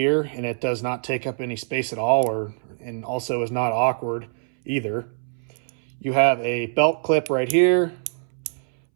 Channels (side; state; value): left; silent; 63 dB below the other